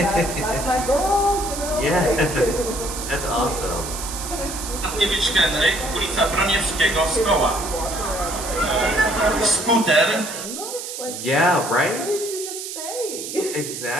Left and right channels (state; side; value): noise; right; hiss, 8 dB below the sound